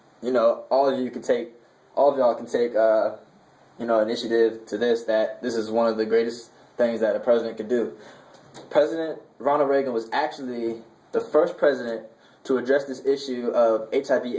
You know, all of y'all can take initiative to this, that this is one of the greatest things that a president could do. President Ronald Reagan was actually the first president to address this issue of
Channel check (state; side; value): identical; both; correlation 1.00